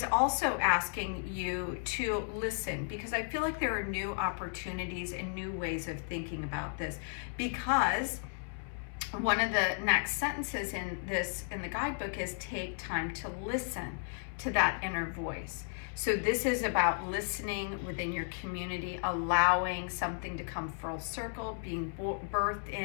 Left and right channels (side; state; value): right; silent; 55 dB below the other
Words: also asking you to listen, because I feel like there are new opportunities and new ways of thinking about this, because one of the next sentences in the guidebook is take time to listen to that inner voice. So this is about listening within your community, allowing something to come full circle, being birthed